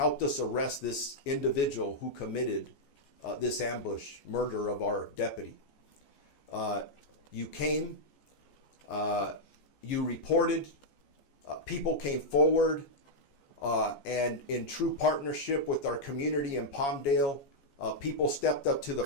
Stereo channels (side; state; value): right; late; 14 ms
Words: us arrest this individual who committed this ambush, murder of our deputy. You came, you reported, people came forward, and in true partnership with our community in Palmdale, people stepped up to the